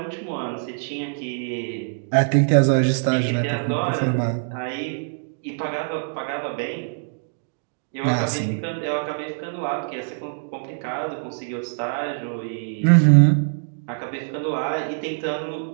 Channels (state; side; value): silent; left; digital silence